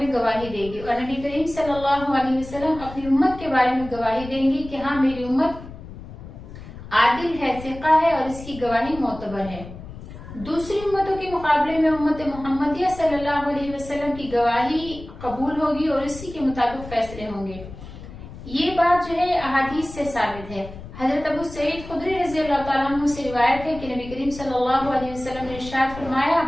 गवाही देगी और नबी करीम सल्लल्लाहु अलैहि वसल्लम अपनी उम्मत के बारे में गवाही देंगी कि हाँ मेरी उम्मत आदिल है, सिक़ा है और इसकी गवाही मोतबर है। दूसरी उम्मतों के मुकाबले में उम्मत मोहम्मदिया सल्लल्लाहु अलैहि वसल्लम की गवाही कबूल होगी और इसी के मुताबिक फैसले होंगे। ये बात जो है अहादीस से साबित है। हजरत अबू सईद खुदरी रज़ी अल्लाह तआला अन्हु से रिवायत है कि नबी करीम सल्लल्लाहु अलैहि वसल्लम ने इरशाद फरमाया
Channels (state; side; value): noise; left; rumble, 14 dB below the sound